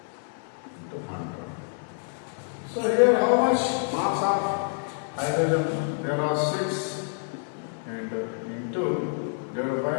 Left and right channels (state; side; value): silent; right; digital silence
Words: into 100. So here how much mass of hydrogen? There are 6 and into divided by